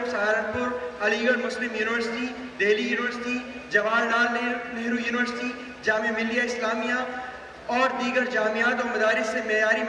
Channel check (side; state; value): both; identical; correlation 1.00